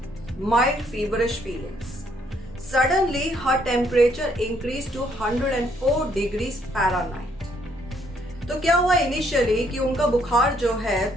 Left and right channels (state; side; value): normal; both; correlation 0.69